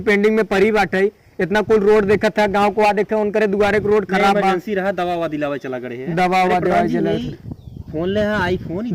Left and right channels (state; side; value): identical; both; correlation 1.00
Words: पेंडिंग में परी बाटे, इतना कुल रोड देखा था, गांव को आ देखे उनके दुआरे को रोड खराब बा। इमरजेंसी रहा, दवा वा दिलावे चला गए। दवा वा दिलावे फोन ले, आईफोन